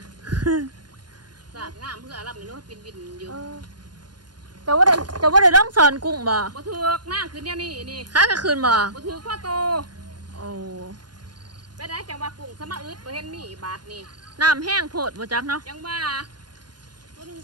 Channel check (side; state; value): left; late; 0.70 ms